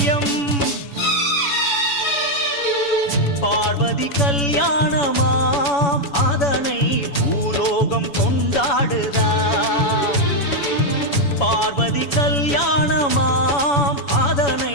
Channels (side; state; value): right; late; 7.0 ms